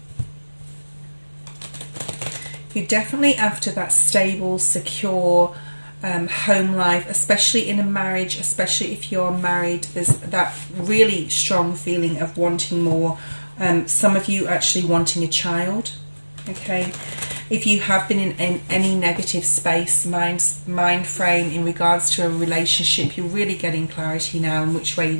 You're definitely after that stable, secure home life, especially in a marriage, especially if you're married. There's that really strong feeling of wanting more. Some of you actually wanting a child, okay? If you have been in any negative space, mind frame in regards to a relationship, you're really getting clarity now in which way you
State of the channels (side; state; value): both; inverted; correlation -1.00